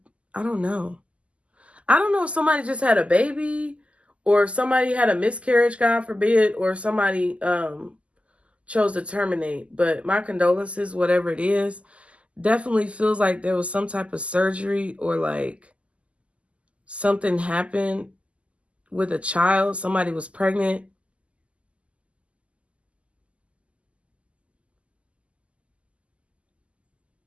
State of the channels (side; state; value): left; late; 0.060 ms